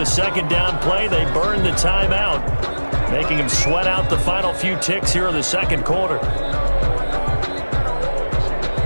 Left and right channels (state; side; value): inverted; both; correlation -1.00